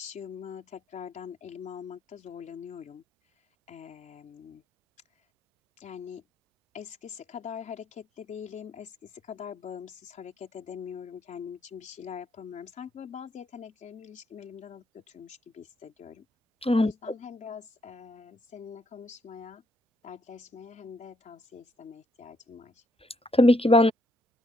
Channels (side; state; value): both; normal; correlation 0.72